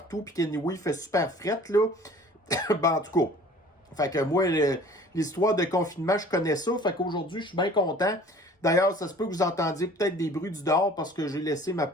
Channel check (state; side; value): normal; both; correlation 0.48